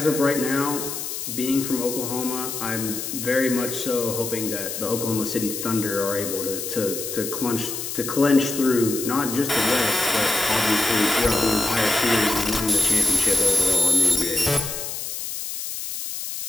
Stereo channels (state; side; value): noise; left; hiss, 6 dB below the sound